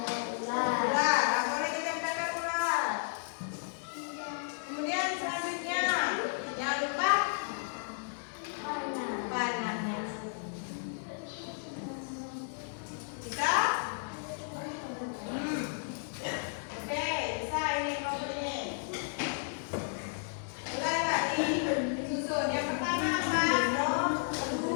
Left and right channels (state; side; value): silent; right; digital silence